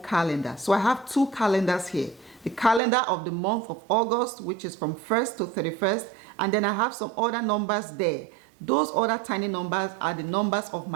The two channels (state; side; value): drops out; left; at 2.8 s